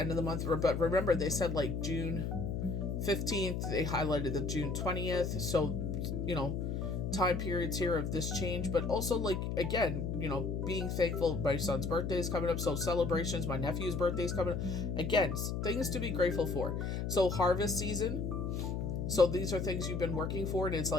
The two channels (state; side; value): noise; left; hum, 2 dB below the sound